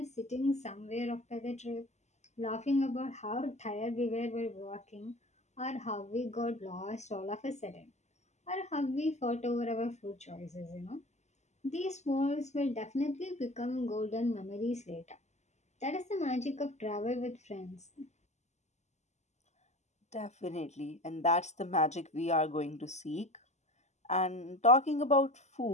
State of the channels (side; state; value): right; late; 0.33 ms